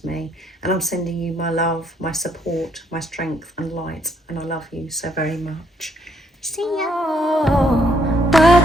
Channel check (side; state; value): both; normal; correlation 0.71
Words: me. And I'm sending you my love, my support, my strength and light. And I love you so very much. See ya. Oh,